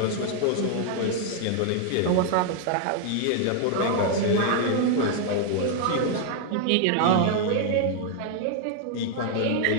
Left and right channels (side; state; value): both; different; correlation 0.00